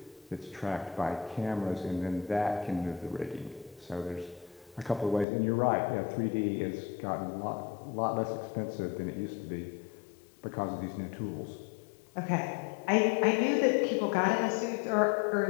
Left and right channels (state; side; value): drops out; right; at 5.2 s